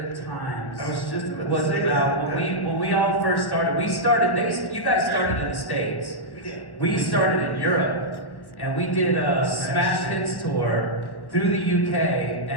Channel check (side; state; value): right; late; 1.2 ms